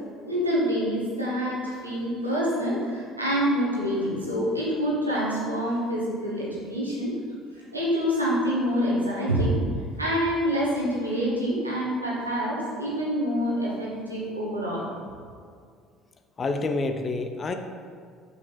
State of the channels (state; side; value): normal; both; correlation 0.37